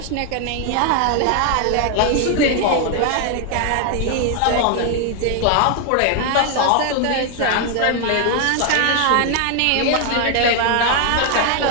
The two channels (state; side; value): different; both; correlation 0.01